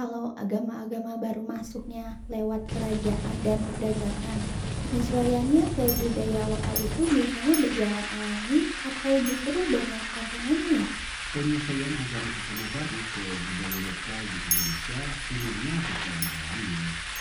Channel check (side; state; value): both; identical; correlation 1.00